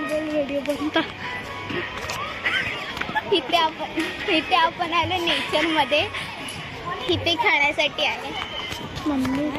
व्हिडिओ बनता. इथे आपण आलो नेचर मध्ये. इथे खेळण्यासाठी आहे. मम्मी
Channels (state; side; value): identical; both; correlation 1.00